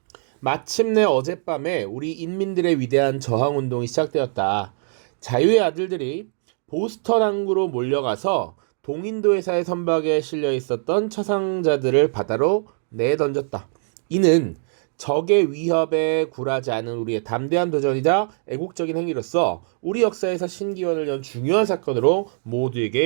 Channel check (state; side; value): silent; left; digital silence